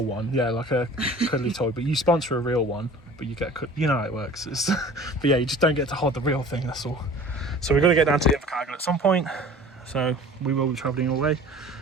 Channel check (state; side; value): normal; both; correlation 0.44